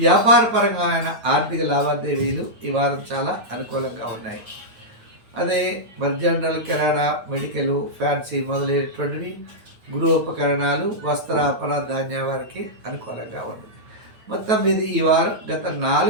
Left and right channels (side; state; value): left; late; 9.1 ms